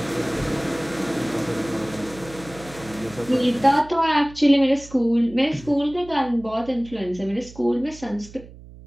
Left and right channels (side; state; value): right; noise; hum, 18 dB below the sound